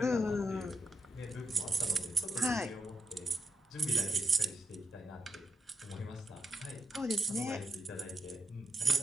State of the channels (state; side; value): normal; both; correlation 0.85